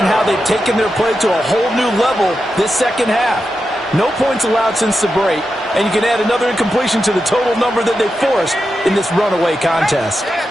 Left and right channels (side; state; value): both; normal; correlation 0.89